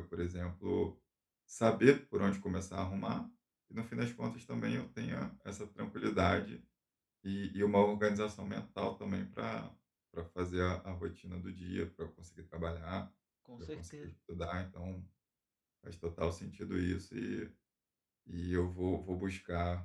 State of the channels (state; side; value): identical; both; correlation 1.00